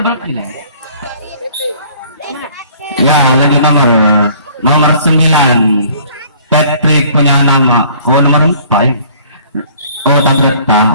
berapa ya lanjut nomor 9 Patrick punya nama oh nomor 4 ya oh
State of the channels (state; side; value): inverted; both; correlation -0.55